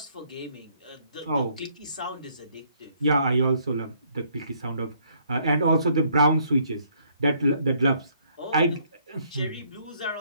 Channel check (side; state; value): both; inverted; correlation -0.66